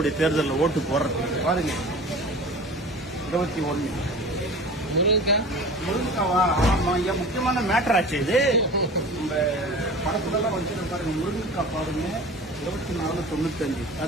தேர்தலில் ஓட்டு போடுறதுக்கு பாருங்க. 21 முருங்கைக்காவா? ஆமா ஐயா முக்கியமான மேட்டர் ஆச்சு இது. நம்ம படத்துலலாம் வச்சுட்டு பாருங்க. முருங்கைக்காய் பாருங்க 24.95.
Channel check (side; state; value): both; normal; correlation 0.38